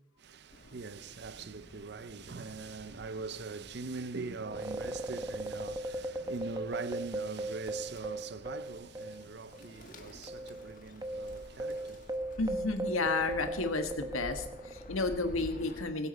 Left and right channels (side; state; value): both; normal; correlation 0.36